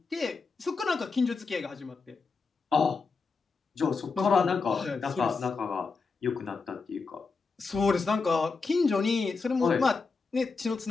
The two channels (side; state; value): right; quieter; 4.5 dB